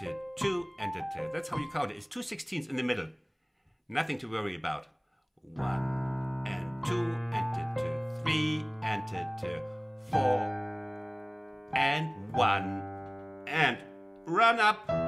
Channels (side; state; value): both; identical; correlation 1.00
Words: 2 and the 2. That's how you count it. It's 2 16ths in the middle. Nothing to worry about. 1 and 2 and the 2, 3 and the 2, 4 and 1 and run up